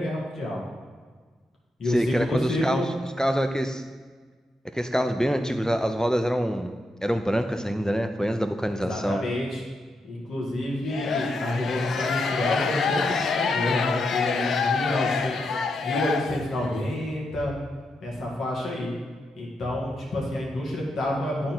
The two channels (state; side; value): normal; both; correlation 0.84